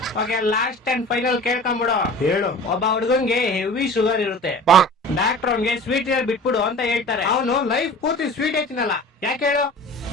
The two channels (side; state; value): both; normal; correlation 0.40